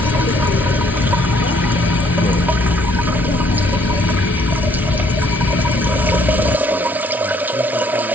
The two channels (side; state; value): both; normal; correlation 0.64